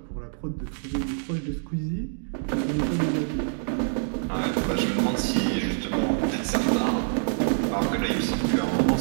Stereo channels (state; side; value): silent; left; digital silence